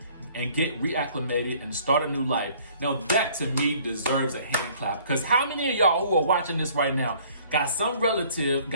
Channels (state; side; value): inverted; both; correlation -0.56